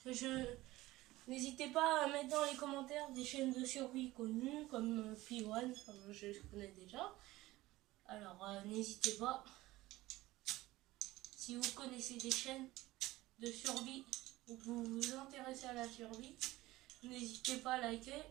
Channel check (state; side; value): quieter; left; 18.0 dB